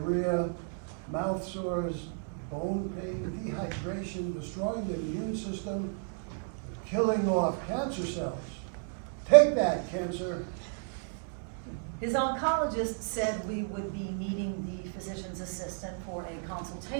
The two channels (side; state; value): left; silent; 56 dB below the other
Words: mouth sores, bone pain, dehydration, destroying the immune system, killing off cancer cells. Take that, cancer. His oncologist said we would be meeting the physician's assistant for a